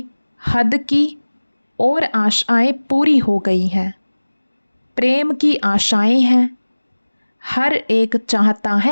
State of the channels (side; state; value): both; inverted; correlation -1.00